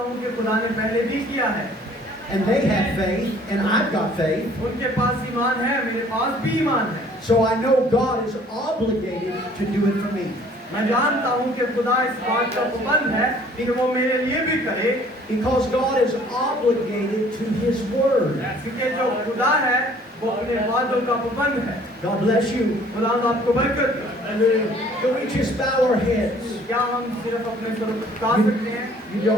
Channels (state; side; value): normal; both; correlation 0.56